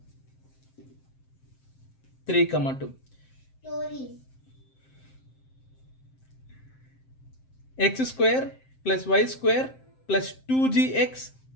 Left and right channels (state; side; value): late; right; 7.7 ms